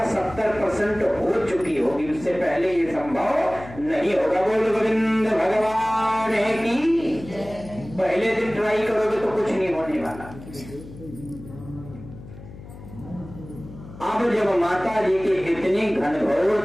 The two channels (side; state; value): left; noise; hum, 16 dB below the sound